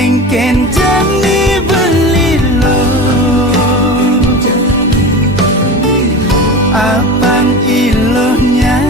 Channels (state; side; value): normal; both; correlation 0.30